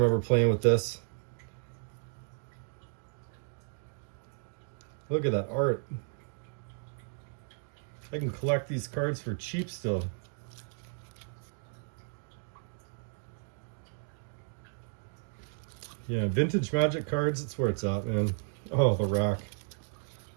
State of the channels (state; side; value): silent; left; digital silence